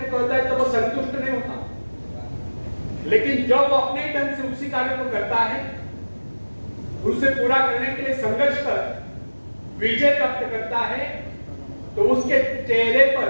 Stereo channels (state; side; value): inverted; both; correlation -1.00